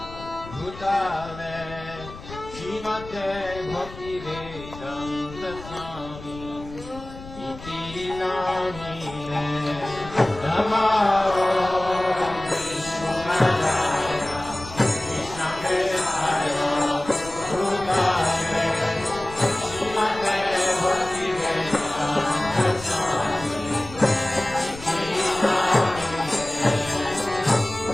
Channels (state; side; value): noise; left; rumble, 15 dB below the sound